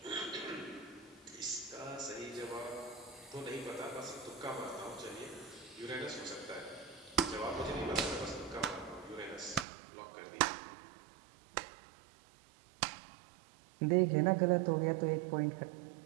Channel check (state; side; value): drops out; left; at 9.7 s